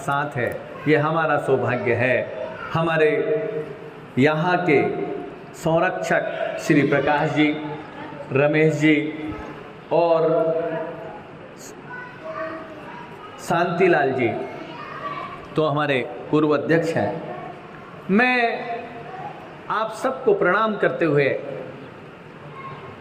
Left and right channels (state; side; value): identical; both; correlation 1.00